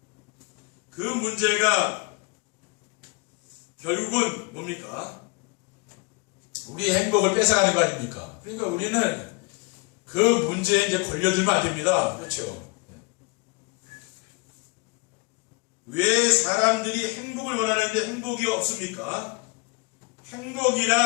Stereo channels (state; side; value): quieter; right; 28.8 dB